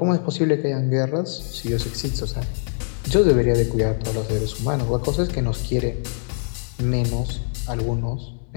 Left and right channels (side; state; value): right; silent; 63 dB below the other